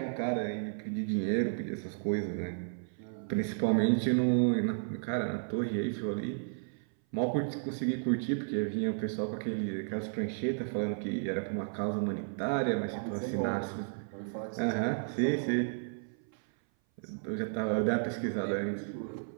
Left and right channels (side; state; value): left; silent; 56 dB below the other